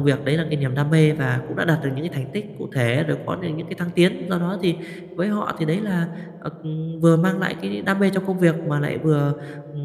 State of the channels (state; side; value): identical; both; correlation 1.00